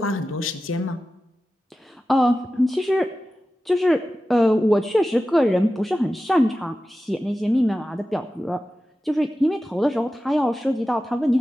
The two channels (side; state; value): both; normal; correlation 0.94